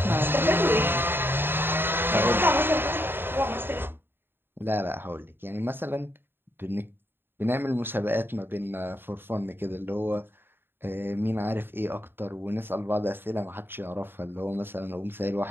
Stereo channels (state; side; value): late; left; 0.10 ms